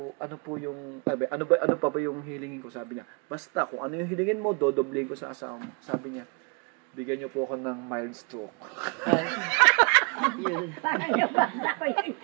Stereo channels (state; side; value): quieter; left; 33.8 dB